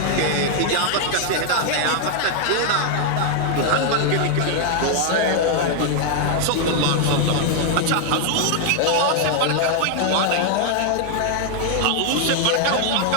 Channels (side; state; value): both; different; correlation 0.00